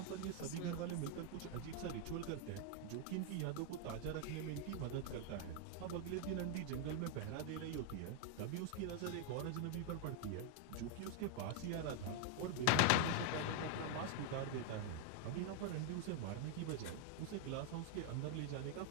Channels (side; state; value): both; different; correlation 0.00